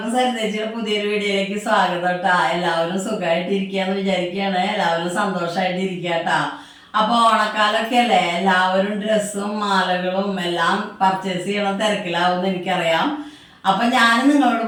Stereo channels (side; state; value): both; identical; correlation 1.00